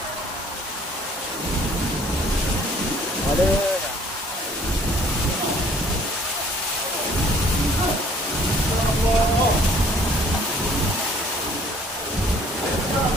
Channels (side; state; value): both; normal; correlation 0.57